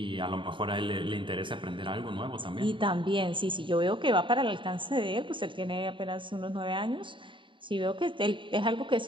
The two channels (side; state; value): left; late; 0.24 ms